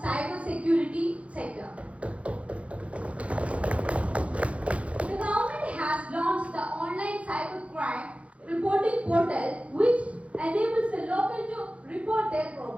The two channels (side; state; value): left; late; 0.063 ms